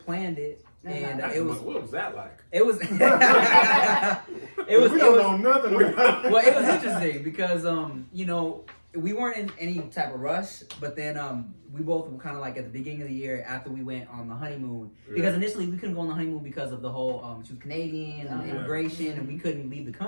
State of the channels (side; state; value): both; inverted; correlation -1.00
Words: it. And it was, what was that like? it was, We don't know nothing about it. well, it was interesting because, you know, we weren't in any type of rush, but then we both were kind of like at the beginning of the year after we went on the honeymoon. Because initially we couldn't go on the honeymoon because of the whole, she was Canadian and immigration, and we couldn't leave the